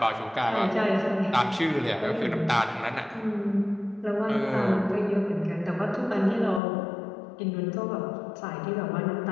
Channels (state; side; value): drops out; right; at 6.6 s